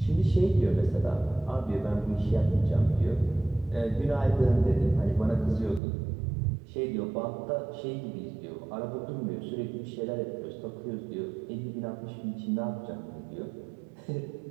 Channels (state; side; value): drops out; left; at 5.8 s